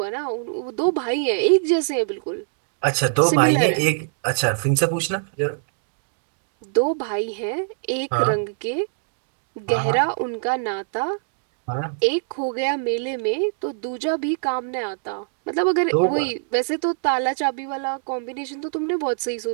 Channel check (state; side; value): silent; left; digital silence